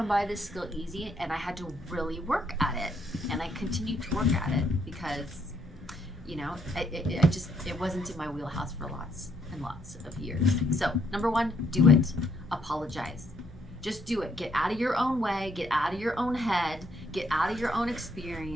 by this skill easy, and I had to really work at it. And I continue to work at it because, you know, it wasn't in my wheelhouse for lots and lots of years. So, number one, do it. Apologize. Just do it. Get out of your own way, get out of your own head, get out of your own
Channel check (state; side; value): normal; both; correlation 0.71